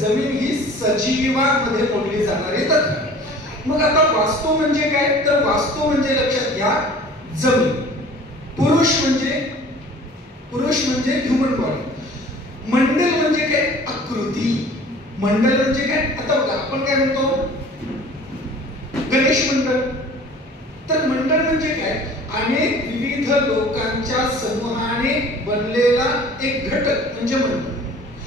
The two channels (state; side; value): normal; both; correlation 0.47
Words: ही सजीवांमध्ये मोडली जाणारी तत्व. मग आता वास्तू म्हणजे काय? तर वास्तू म्हणजे लक्षात घ्या, जमीन. पुरुष म्हणजे पुरुष म्हणजे ह्युमन बॉडी, मंडल म्हणजे काय आकृती, मंडल म्हणजे काय, आता बघा आपण काय म्हणतो गणेश मंडळ, तर मंडळ म्हणजे काय, अनेक विविध लोकांच्या समूहाने बनलेला एक घटक म्हणजे मंडळ.